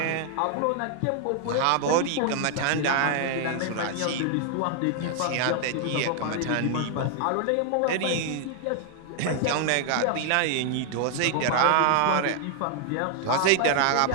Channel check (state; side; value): different; both; correlation 0.00